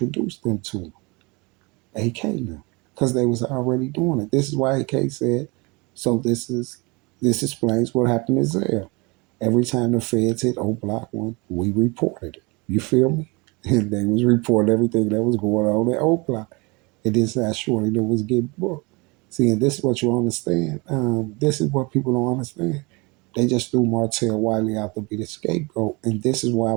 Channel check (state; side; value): quieter; left; 27.3 dB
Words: them to him? AK now. Because they was already doing it. This is why AK said, so this explains what happened in Zell. Every time the feds hit O Block 1, we reported it. You feel me? And they was reporting everything that was going on at O Block. And this that shorty that was getting booked. See, and this is what you understand. This is what people don't understand. They just threw Martell Wiley out to be the scapegoat. And this is why I